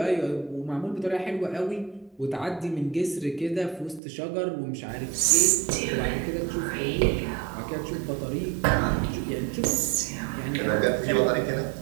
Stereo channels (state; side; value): drops out; left; at 4.0 s